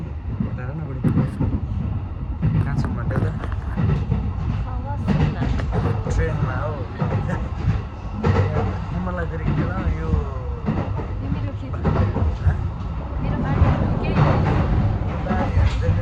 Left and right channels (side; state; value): both; identical; correlation 1.00